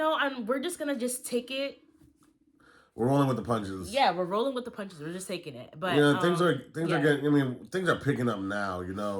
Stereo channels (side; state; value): both; identical; correlation 1.00